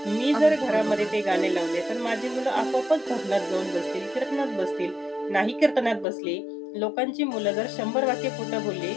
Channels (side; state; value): right; drops out; at 6.1 s